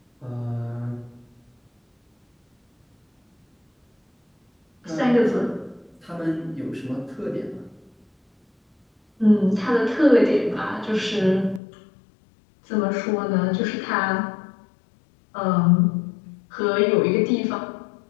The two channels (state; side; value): drops out; right; at 11.6 s